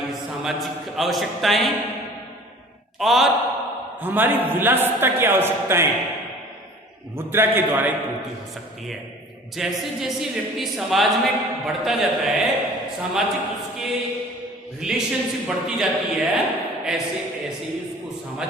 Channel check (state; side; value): normal; both; correlation 0.46